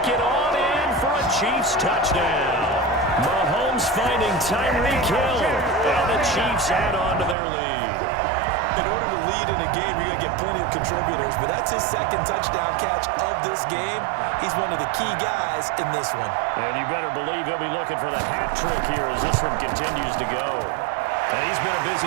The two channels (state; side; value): drops out; left; at 7.4 s